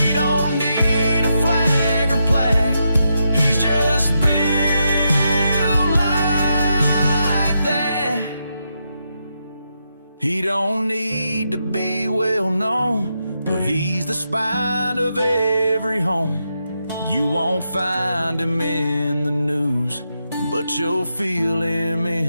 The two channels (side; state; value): both; inverted; correlation -0.84